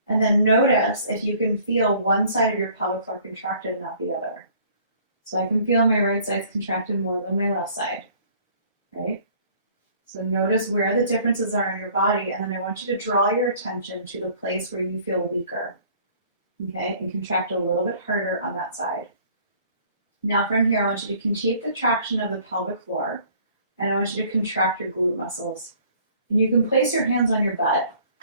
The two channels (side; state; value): both; inverted; correlation -0.55